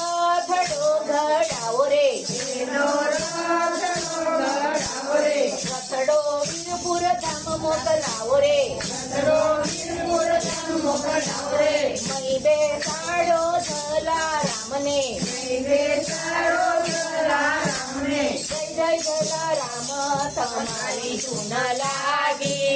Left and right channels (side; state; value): both; identical; correlation 1.00